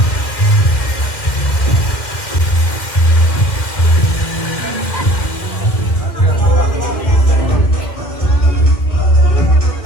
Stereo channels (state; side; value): late; right; 2.2 ms